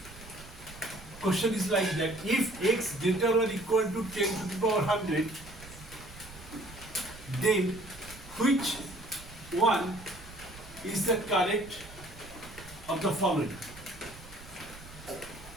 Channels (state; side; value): noise; right; rumble, 18 dB below the sound